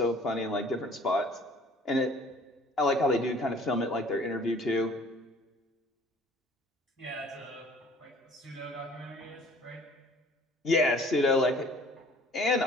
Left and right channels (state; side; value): normal; both; correlation 0.53